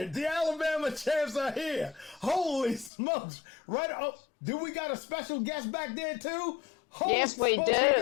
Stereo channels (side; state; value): right; drops out; at 2.9 s